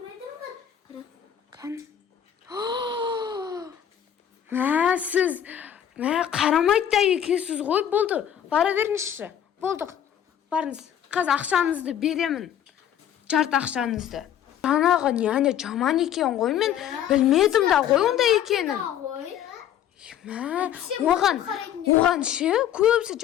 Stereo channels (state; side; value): quieter; right; 10.1 dB